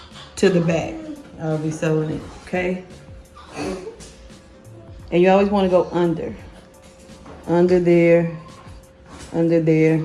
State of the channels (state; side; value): identical; both; correlation 1.00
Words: to the back. I'll be sewing it, okay? And you always want to go under there.